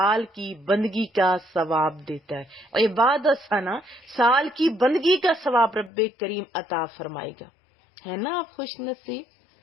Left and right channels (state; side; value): drops out; right; at 5.9 s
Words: کی بندگی کا ثواب دیتا ہے، عبادت سنا، سال کی بندگی کا ثواب رب کریم عطا فرمائے گا، ہے نا آپ خوش نصیب؟